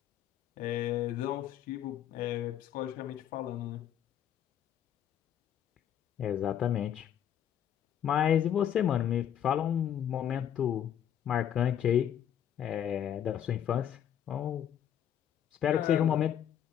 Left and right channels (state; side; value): quieter; right; 9.8 dB